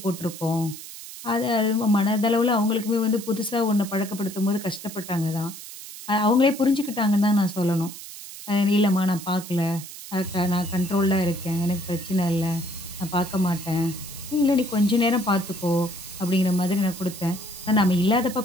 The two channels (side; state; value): right; noise; hiss, 13 dB below the sound